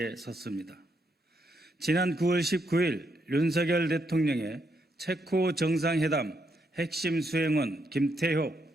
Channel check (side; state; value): both; normal; correlation 0.78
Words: 섰습니다. 지난 9월 19일 윤석열 대통령의 체코 정상회담 핵심 수행원 김태효